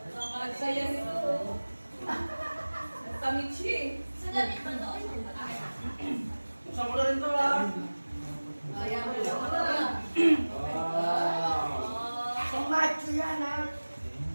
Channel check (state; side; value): inverted; both; correlation -1.00